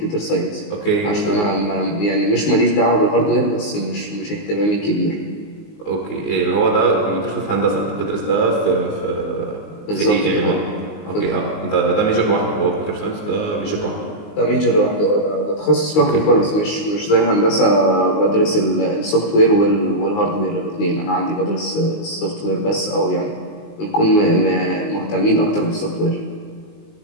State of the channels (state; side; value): late; right; 19 ms